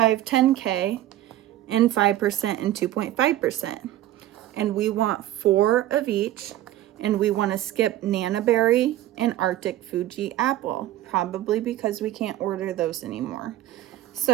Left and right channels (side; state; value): left; quieter; 13.9 dB